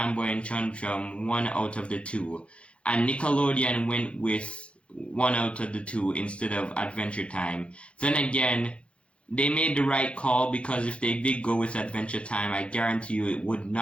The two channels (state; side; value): late; right; 0.060 ms